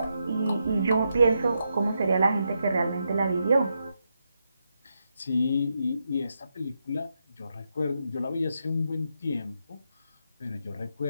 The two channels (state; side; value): inverted; both; correlation -0.83